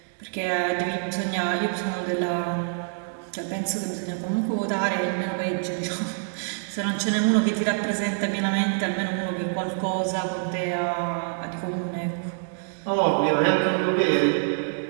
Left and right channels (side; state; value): left; silent; digital silence